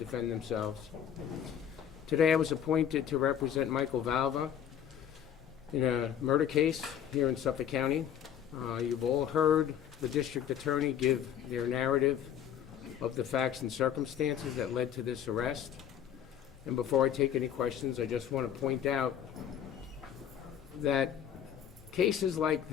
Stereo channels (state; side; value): quieter; right; 9.4 dB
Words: themselves. Today I was appointed to represent Michael Valva in a murder case here in Suffolk County. You've all heard the district attorney give their narrative of the facts and circumstances that led to this arrest. And before I take any questions, I just want to point out that cases like